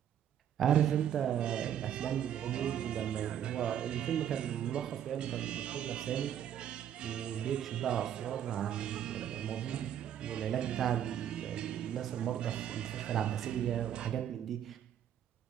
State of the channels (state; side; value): quieter; left; 9.9 dB